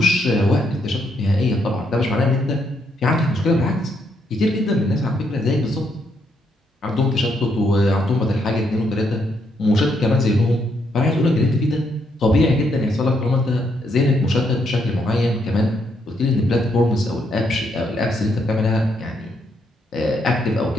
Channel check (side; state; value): both; normal; correlation 0.75